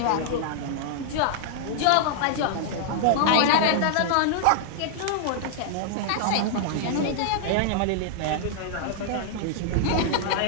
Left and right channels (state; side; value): different; both; correlation -0.01